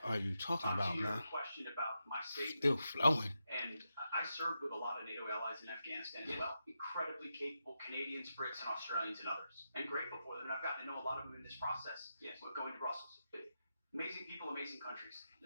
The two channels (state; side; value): inverted; both; correlation -0.87